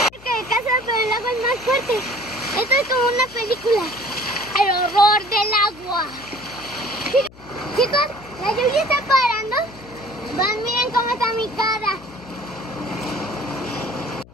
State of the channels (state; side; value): noise; left; hum, 22 dB below the sound